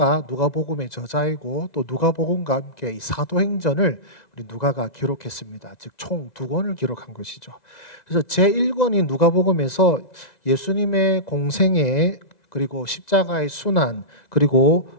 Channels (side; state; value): right; late; 2.0 ms